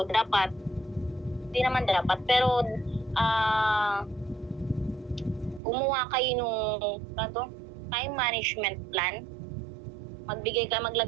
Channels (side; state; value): left; drops out; at 5.6 s